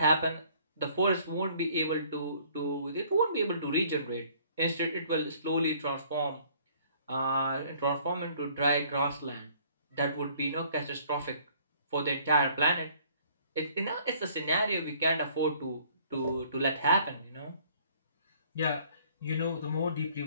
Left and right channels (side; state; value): both; inverted; correlation -0.58